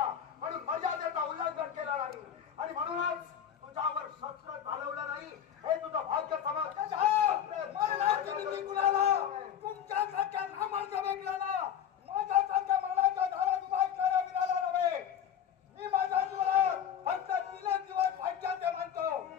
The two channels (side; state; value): right; quieter; 9.1 dB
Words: म्हणून मर्यादेचा उल्लंघन केलं नाही आणि म्हणूनच तुझ्यावर शस्त्र चालवलं नाही. हे तुझं भाग्य समज. मरणाची भीती कुणाला? तुमच्यासारख्या नामांच्या वेगळ्याला, माझ्यासारख्या मरणाच्या धारात उभा असणाऱ्या वीराला नव्हे. मी माझ्या जीवनात फक्त 3 दिवस भाग्याचे म्हणतो.